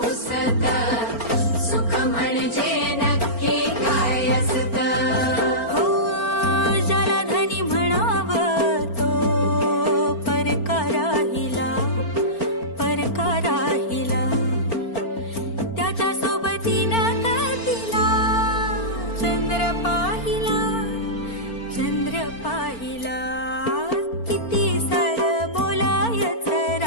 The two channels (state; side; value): late; right; 4.4 ms